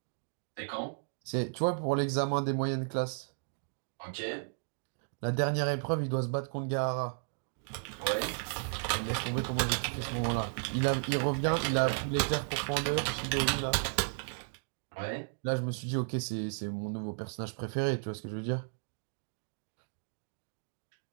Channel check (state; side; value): silent; left; digital silence